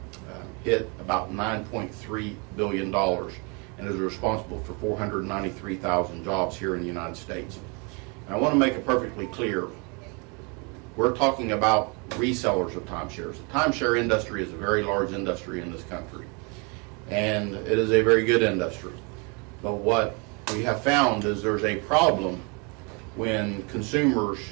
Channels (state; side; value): quieter; left; 32.2 dB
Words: hit about $9.3 billion and is responsible for 493,000 jobs here in the United States. And I want to make it perfectly clear, we're talking about resellers of timeshares. The timeshare industry is a very large industry in this country, and it is a very good industry. But what we have found is there's a problem when consumers